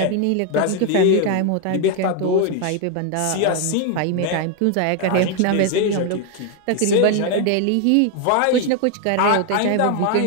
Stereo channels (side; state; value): both; different; correlation 0.01